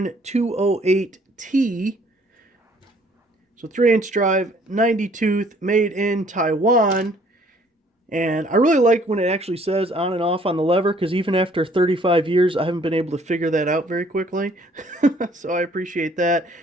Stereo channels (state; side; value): normal; both; correlation 0.60